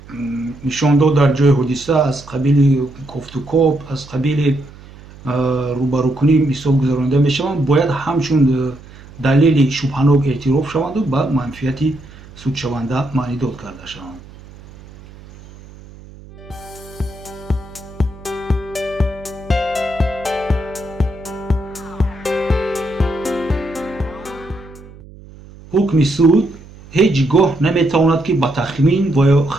нишондод дар ҷои ҳодиса, аз қабили кофтукоп, аз қабили рӯбарӯкунӣ мисол гузаронида мешаванд, бояд ҳамчун далели шубҳанок эътироф шаванду ба манфиати судшаванда маънидод карда шаванд. ҳукми суд ҳеҷ гоҳ наметавонад ки ба тахмин ва ё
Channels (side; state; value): right; noise; hum, 20 dB below the sound